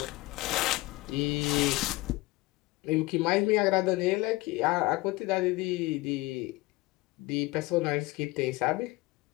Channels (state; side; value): quieter; right; 21.0 dB